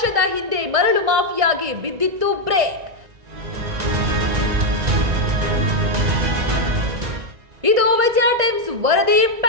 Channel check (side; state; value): left; late; 1.9 ms